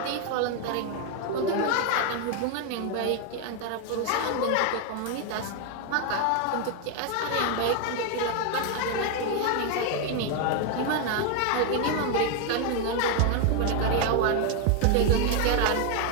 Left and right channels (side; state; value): both; different; correlation 0.01